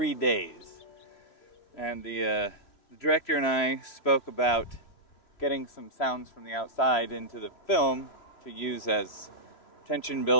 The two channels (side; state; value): right; late; 3.0 ms